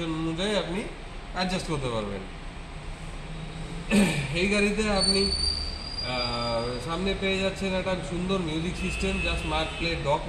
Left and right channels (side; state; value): both; identical; correlation 1.00